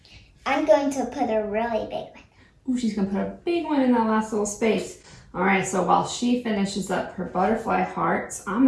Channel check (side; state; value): both; identical; correlation 1.00